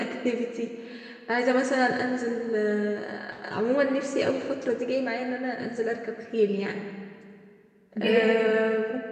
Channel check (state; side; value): identical; both; correlation 1.00